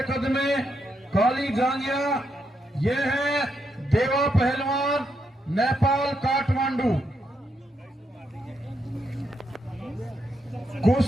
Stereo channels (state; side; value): normal; both; correlation 0.80